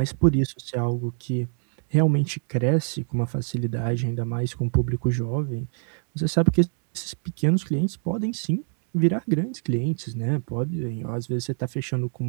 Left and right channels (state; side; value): silent; left; 59 dB below the other